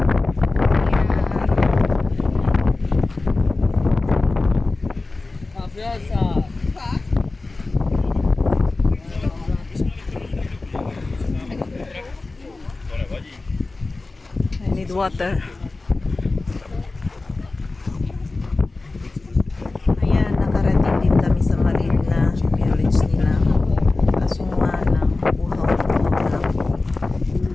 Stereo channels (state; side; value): quieter; right; 3.4 dB